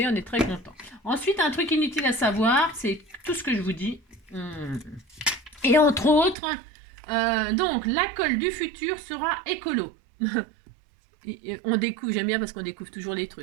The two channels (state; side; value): drops out; left; at 6.4 s